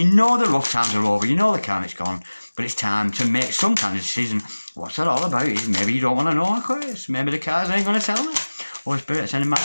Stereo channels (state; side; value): inverted; both; correlation -1.00